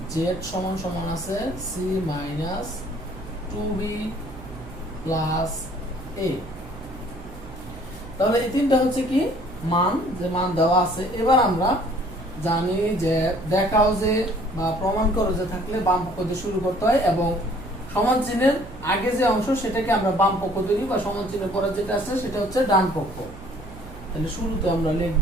z সমান আছে c minus 2b plus a। তাহলে এই তিনটা হচ্ছে কি মান, যে মান দেওয়া আছে। এবার আমরা জানি যে দেখাও যে বা প্রমাণ করো যে থাকলে বাম পক্ষ দিয়ে শুরু করতে হয় এবং সমান চিহ্নের আগে যে অংশ সেটাকে আমরা বাম পক্ষ ধরি বা সমান চিহ্নের পরে যেটা আছে সেটা হচ্ছে ডান পক্ষ। তাহলে শুরুতে আমরা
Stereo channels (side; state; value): right; noise; hum, 16 dB below the sound